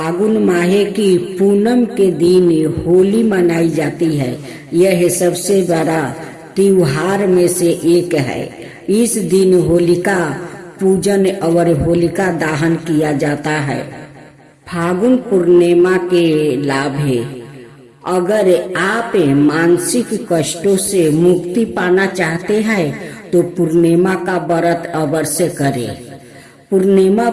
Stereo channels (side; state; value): both; identical; correlation 1.00